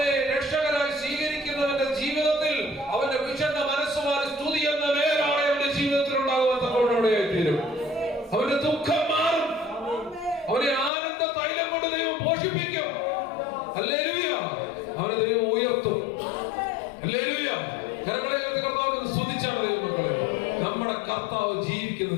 രക്ഷകനായി സ്വീകരിക്കുന്നവന്റെ ജീവിതത്തിൽ അവന്റെ വിഷണ്ണ മനസ്സുമാറി സ്തുതി എന്ന മേലാണ് അവന്റെ ജീവിതത്തിൽ ഉണ്ടാകുവാൻ തീരും. അവന്റെ ദുഃഖം മാറും. അവനെ ആനന്ദ തൈലം കൊണ്ട് ദൈവം പോഷിപ്പിക്കും. ഹല്ലേലൂയ. അവനെ ദൈവം ഉയർത്തും. ഹല്ലേലൂയ. കരങ്ങളെ കർത്താവിനെ സ്തുതിച്ചാണ് ദൈവമക്കളെ. നമ്മുടെ കർത്താവ് ജീവിക്കുന്ന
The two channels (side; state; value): right; drops out; at 10.9 s